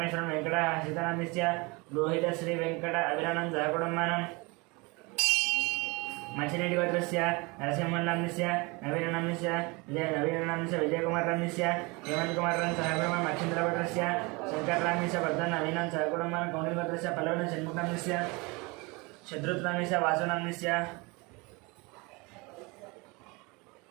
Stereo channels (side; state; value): left; quieter; 26.6 dB